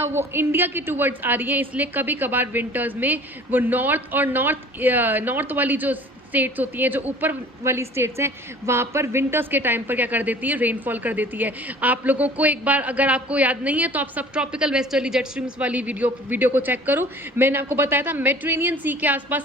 वो इंडिया की टूवर्ड्स आ रही हैं। इसलिए कभी कभार विंटर्स में वो नॉर्थ और नॉर्थ वाली जो स्टेट्स होती हैं, जो ऊपर वाली स्टेट्स हैं, वहाँ पर विंटर्स के टाइम पर क्या कर देती है, रेनफॉल कर देती है। आप लोगों को एक बार अगर आपको याद नहीं है तो आप सब ट्रॉपिकल वेस्टर्ली जेट स्ट्रीम्स वाली वीडियो को चेक करो। मैंने आपको बताया था मेडिटेरेनियन सी के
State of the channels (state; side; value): normal; both; correlation 0.47